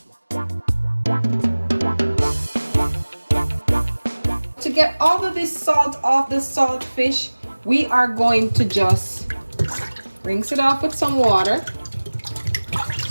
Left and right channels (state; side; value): inverted; both; correlation -1.00